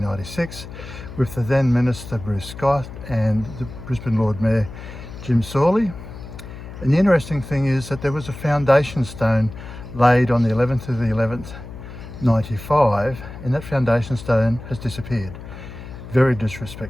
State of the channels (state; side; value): noise; left; hum, 13 dB below the sound